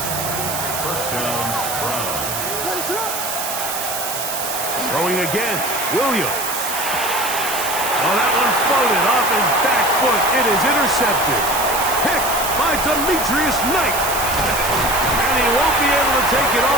First down, Brown. Throwing again, Williams. Oh, that one floated off his back foot. It is intercepted. Picked by Demetrius Knight. And he won't be able to take it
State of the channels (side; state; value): right; noise; hiss, 4 dB below the sound